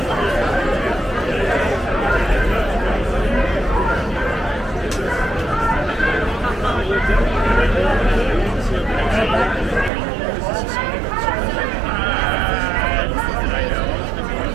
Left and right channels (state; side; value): drops out; left; at 9.9 s